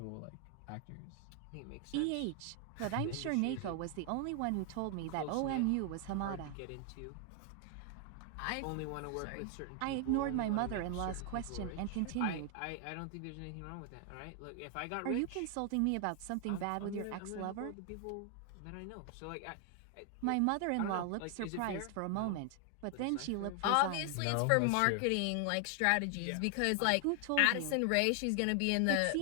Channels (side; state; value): both; different; correlation 0.00